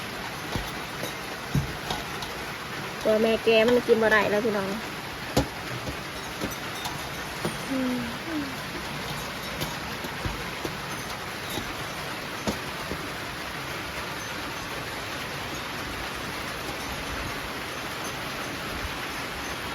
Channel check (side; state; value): both; identical; correlation 1.00